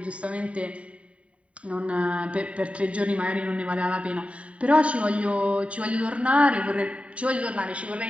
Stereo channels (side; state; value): left; late; 0.064 ms